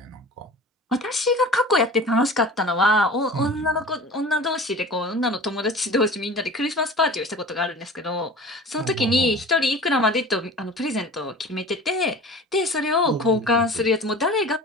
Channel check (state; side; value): normal; both; correlation 0.39